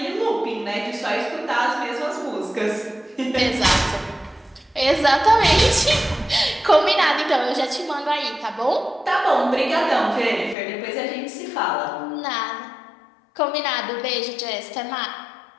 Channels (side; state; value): right; drops out; at 10.6 s